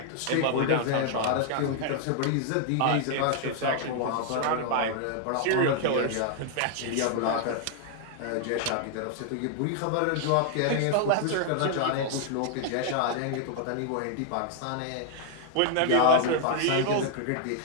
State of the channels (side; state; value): both; different; correlation 0.00